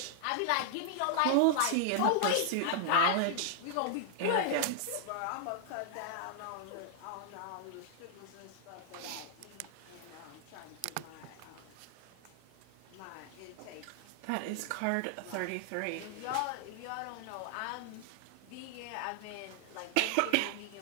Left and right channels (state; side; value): different; both; correlation -0.01